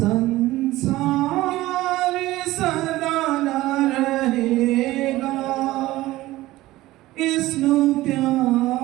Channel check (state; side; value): quieter; left; 17.2 dB